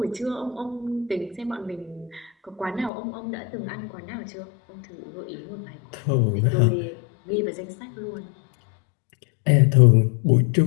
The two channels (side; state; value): right; drops out; at 2.9 s